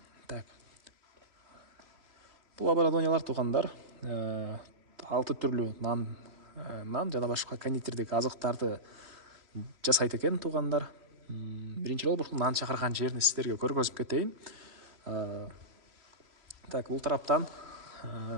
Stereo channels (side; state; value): left; late; 3.0 ms